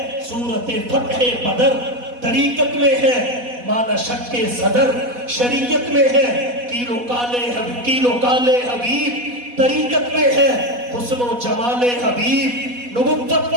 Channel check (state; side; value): late; left; 4.1 ms